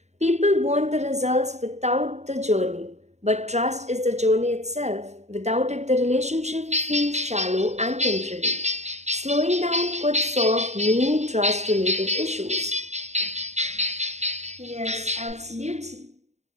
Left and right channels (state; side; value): late; left; 0.33 ms